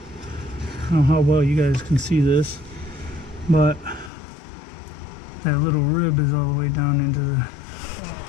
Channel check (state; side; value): drops out; right; at 4.1 s